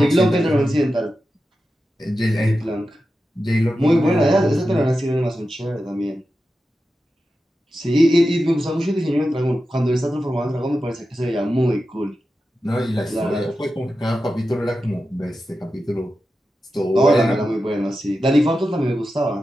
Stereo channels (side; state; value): both; normal; correlation 0.91